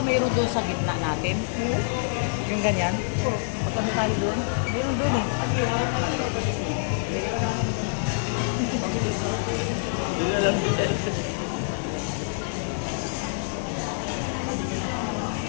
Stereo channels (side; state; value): right; silent; digital silence